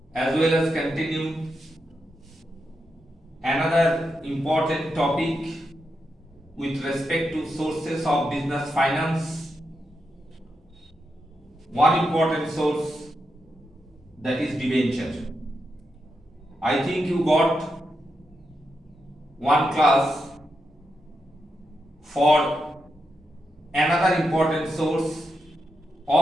as well as continue another important topic with respect to sources of business finance. One important source, that is debenture. I think you got one class for another important source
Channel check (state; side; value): normal; both; correlation 0.85